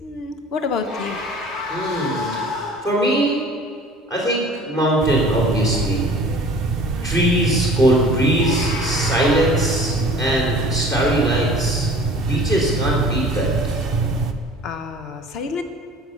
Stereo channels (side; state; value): both; normal; correlation 0.47